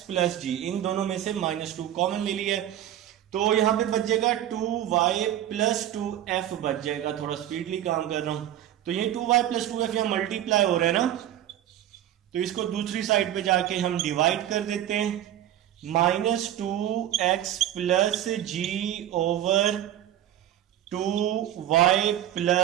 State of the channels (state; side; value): quieter; left; 11.8 dB